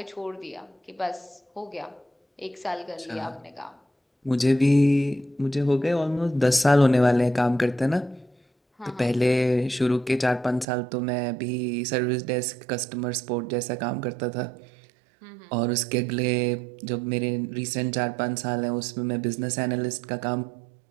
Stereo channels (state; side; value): drops out; left; at 10.7 s